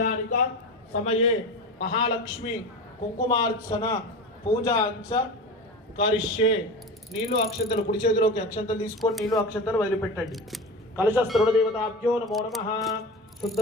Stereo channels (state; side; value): normal; both; correlation 0.28